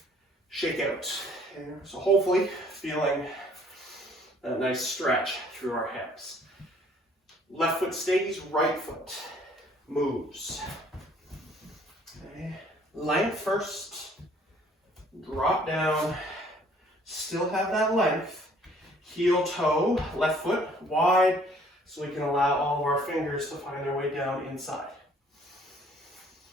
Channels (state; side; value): normal; both; correlation 0.59